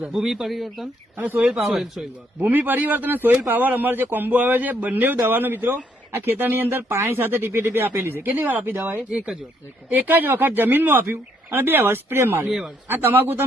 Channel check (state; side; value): normal; both; correlation 0.71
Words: ભૂમિ પરિવર્તન અને સોઇલ પાવર. સોઇલ વાર. ભૂમિ પરિવર્તન અને સોઇલ પાવર અમારે જે કોમ્બો આવે છે, બંને દવાનો મિત્રો આ ખેતરની અંદર પાણી સાથે ટીપી આપેલી છે. કેટલી વાર આપી દવા એ? એક જ વાર. એક જ વખત જમીનમાં આપ્યું અને 2 વાર સ્પ્રે માર્યો. 2 વાર. આ તમાકુ